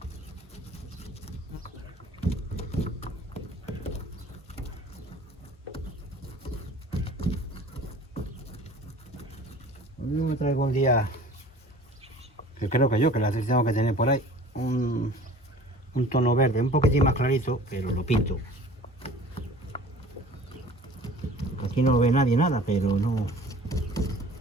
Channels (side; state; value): both; normal; correlation 0.45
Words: Yo me traigo un día, que creo que la tengo que tener por ahí, un tono verde, un poquitín más clarito, pero lo pinto. Aquí no ve nadie nada, pero no,